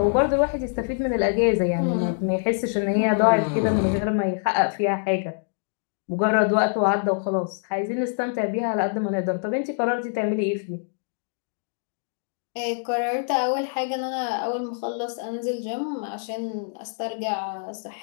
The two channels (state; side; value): silent; right; digital silence